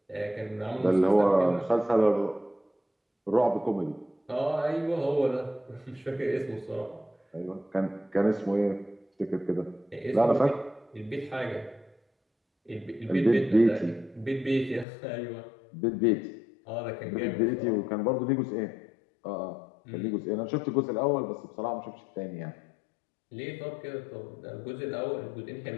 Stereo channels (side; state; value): right; drops out; at 14.9 s